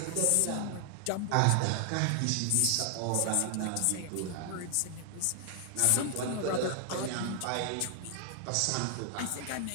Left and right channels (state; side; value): different; both; correlation 0.00